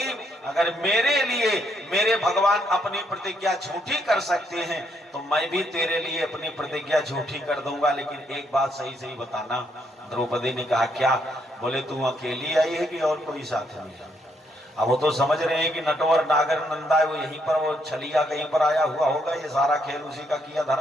अगर मेरे लिए मेरे भगवान अपनी प्रतिज्ञा झूठी कर सकते हैं तो मैं भी तेरे लिए अपनी प्रतिज्ञा झूठी कर दूंगा, लेकिन एक बात सही सही बताना। द्रौपदी ने कहा क्या? बोले तू अकेली आई है कि और कोई साथ में? अब वो तो समझ रहे हैं कि नटवर नागर नंदा है, वो यहीं पर वो छलिया कहीं पर आया हुआ होगा, ये सारा खेल उसी का किया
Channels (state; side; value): normal; both; correlation 0.74